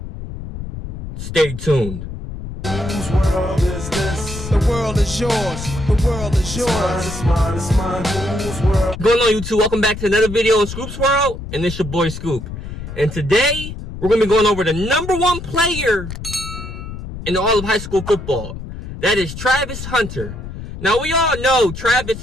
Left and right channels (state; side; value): noise; left; rumble, 9 dB below the sound